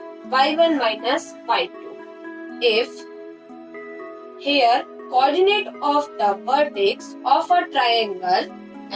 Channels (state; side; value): identical; both; correlation 1.00